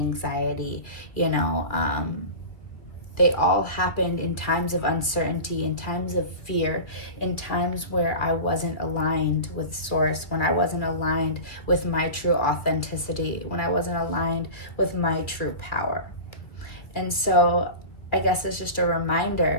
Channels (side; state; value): right; late; 2.0 ms